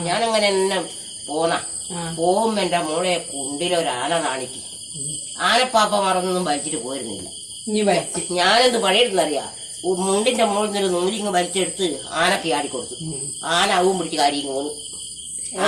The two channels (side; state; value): both; identical; correlation 1.00